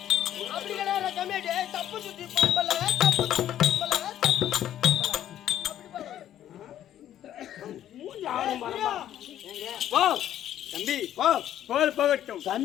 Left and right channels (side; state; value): right; quieter; 11.4 dB